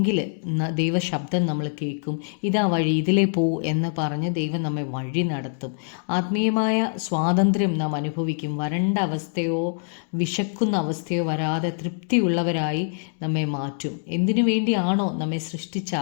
ദൈവശബ്ദം നമ്മൾ കേൾക്കും. ഇതാ വഴി, ഇതിലേ പോ എന്ന് പറഞ്ഞ് ദൈവം നമ്മെ വഴി നടത്തും. ആത്മീയമായ സ്വാതന്ത്ര്യം നാം അനുഭവിക്കും. വരണ്ട അവസ്ഥയോ വിശക്കുന്ന അവസ്ഥയോ വരാതെ തൃപ്തിയുള്ളവരായി നമ്മെ മാറ്റും. എന്തിനു വേണ്ടിയാണോ നമ്മെ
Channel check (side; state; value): right; silent; digital silence